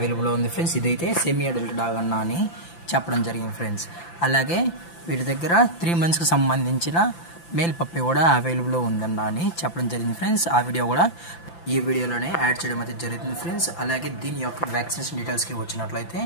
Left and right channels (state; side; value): late; right; 5.9 ms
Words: ఉంది ఫ్రెండ్స్. ఇదైతే సెమీ అడల్ట్ డాగ్ అన్నా అని చెప్పడం జరిగింది ఫ్రెండ్స్. అలాగే వీటి దగ్గర 3 monthsకి సంబంధించిన మేల్ పప్పి కూడా అవైలబుల్ ఉందన్నా అని చెప్పడం జరిగింది ఫ్రెండ్స్. ఆ వీడియో కూడా ఈ వీడియోలోనే యాడ్ చేయడం అయితే జరుగుతుంది ఫ్రెండ్స్. అలాగే దీని యొక్క వ్యాక్సినేషన్ డీటెయిల్స్కి వచ్చినట్లయితే